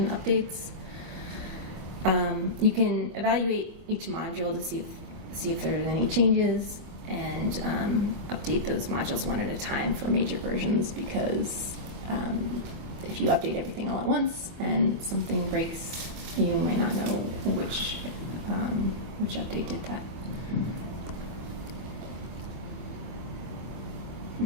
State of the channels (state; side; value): late; left; 24 ms